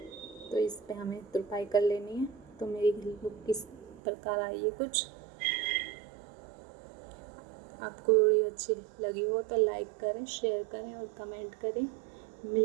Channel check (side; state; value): left; drops out; at 4.0 s